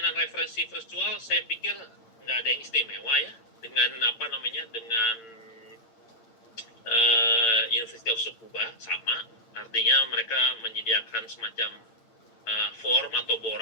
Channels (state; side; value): late; right; 8.8 ms